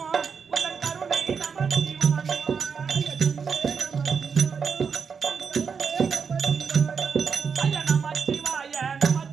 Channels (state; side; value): quieter; left; 6.0 dB